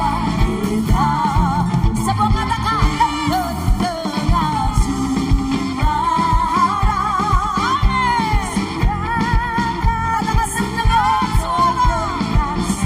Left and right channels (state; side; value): identical; both; correlation 1.00